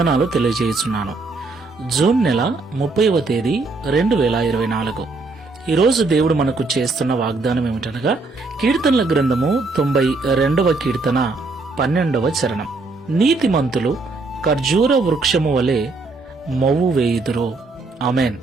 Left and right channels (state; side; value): quieter; left; 3.6 dB